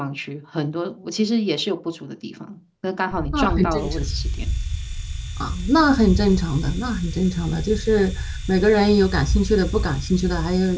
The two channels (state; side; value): identical; both; correlation 1.00